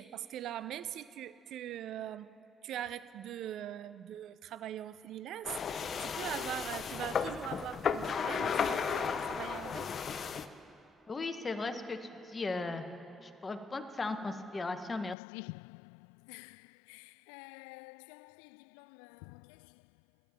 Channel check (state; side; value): drops out; right; at 15.2 s